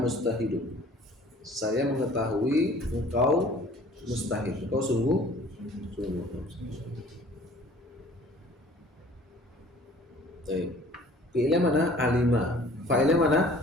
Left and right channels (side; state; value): both; normal; correlation 0.51